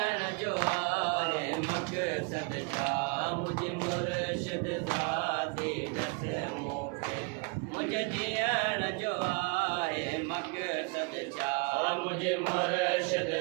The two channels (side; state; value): left; quieter; 30.3 dB